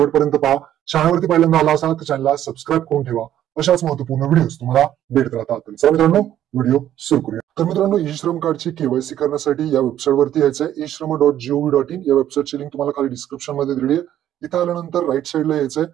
पहा. चॅनलवरती पहिल्यांदा आला असाल तर चॅनलला सबस्क्राईब करून ठेवा. अशाच महत्वपूर्ण व्हिडिओज तुम्हाला भेटत राहतात. तर मित्रांनो व्हिडिओ सुरू करूया. तर मित्रांनो ई श्रम कार्डची केवायसी करण्यासाठी या वेबसाईटवरती यायचं आहे. eShram.gov.in या वेबसाईटची लिंक तुम्हाला खाली डिस्क्रिप्शन मध्ये दिली आहे. इथं आल्यानंतर राईट साईडला यायचंय.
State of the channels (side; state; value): left; quieter; 11.6 dB